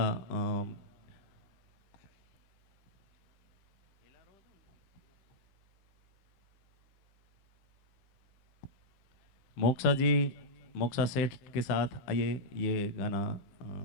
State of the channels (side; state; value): right; late; 15 ms